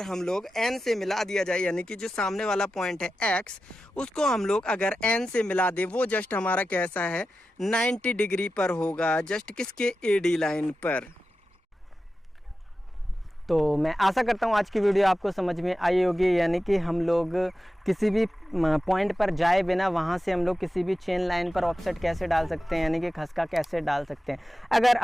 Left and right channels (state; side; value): normal; both; correlation 0.93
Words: हम लोग एन से मिला दिया जाए, यानी कि जो सामने वाला पॉइंट है एक्स, उसको हम लोग अगर एन से मिला दे, वो जस्ट हमारा कैसा है, 90 डिग्री पर होगा, जस्ट किसके, एडी लाइन पर। तो मैं आशा करता हूँ आज की वीडियो आपको समझ में आई होगी, यानी कि हम लोग किसी भी पॉइंट पर जाए बिना वहाँ से हम लोग किसी भी चेन लाइन पर ऑफसेट कैसे डाल सकते हैं, यानी कि खसका कैसे डाल सकते हैं। अगर